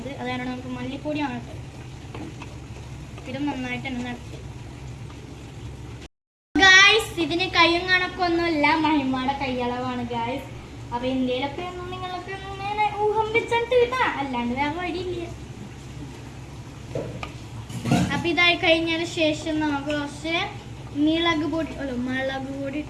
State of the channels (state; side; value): identical; both; correlation 1.00